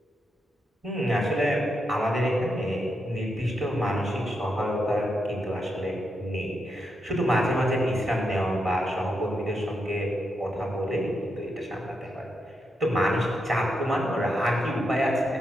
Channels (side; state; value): both; normal; correlation 0.83